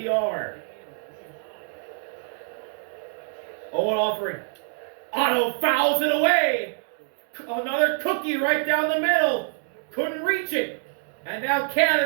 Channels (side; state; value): left; silent; digital silence